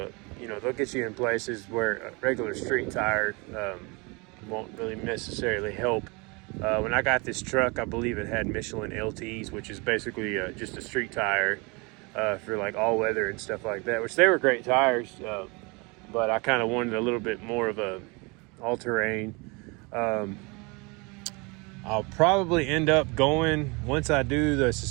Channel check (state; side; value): quieter; left; 28.3 dB